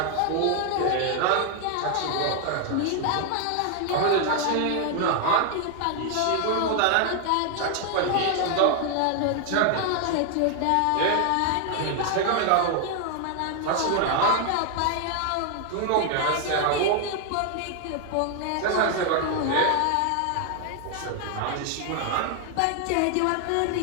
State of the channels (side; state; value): both; different; correlation 0.00